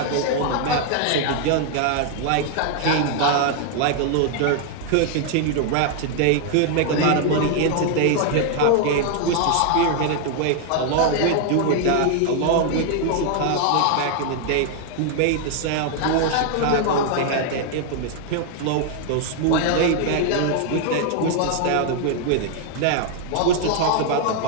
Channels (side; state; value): both; different; correlation 0.00